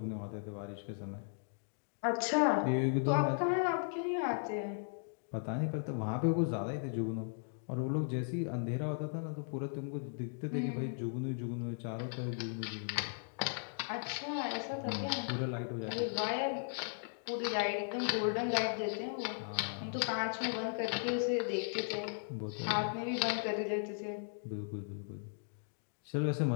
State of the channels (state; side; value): silent; right; digital silence